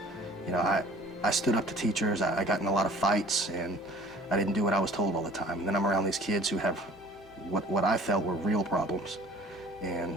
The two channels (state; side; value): normal; both; correlation 0.50